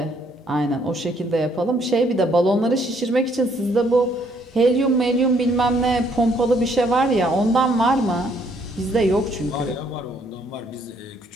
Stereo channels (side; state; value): both; normal; correlation 0.67